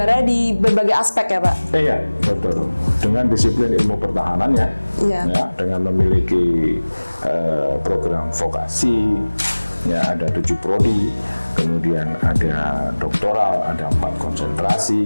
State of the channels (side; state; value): both; inverted; correlation -1.00